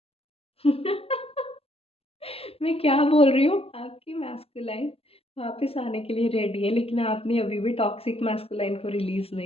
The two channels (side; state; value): right; late; 0.28 ms